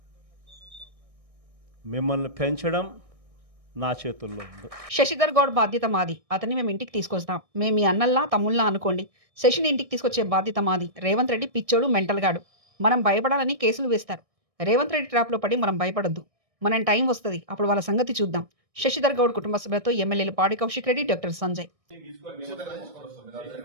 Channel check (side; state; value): left; late; 1.6 ms